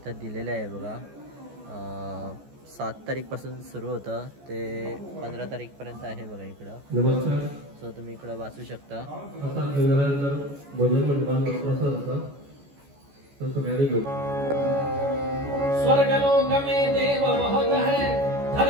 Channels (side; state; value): left; late; 14 ms